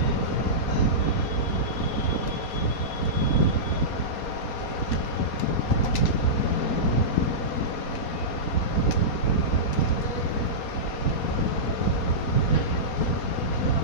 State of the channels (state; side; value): late; right; 4.2 ms